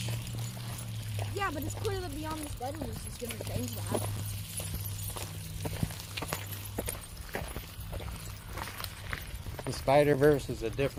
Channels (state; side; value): identical; both; correlation 1.00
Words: yeah, but it's clear that Beyond the Spider-Verse is going to change that. The Spider-Verse is a